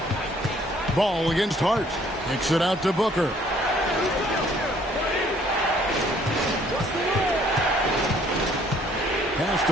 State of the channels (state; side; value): normal; both; correlation 0.60